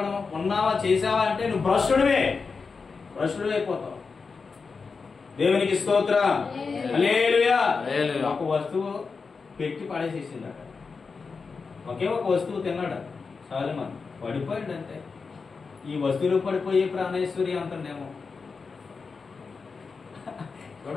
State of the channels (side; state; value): right; quieter; 4.8 dB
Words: ఉన్నావా చేసావా అంటే నువ్వు భ్రష్టుడివే అయిపోతావు. దేవునికి స్తోత్రం. హల్లెలూయా. ఒక వస్తువు పెట్టి పడేసేసిందట. ఒకే ఒక వస్తువు తిన్నాడు సొలొమోను, పడిపోయాడు. అంతే. ఈ వస్తువులు పడిపోయే ప్రాణేశ్వరి అంటుండేమో.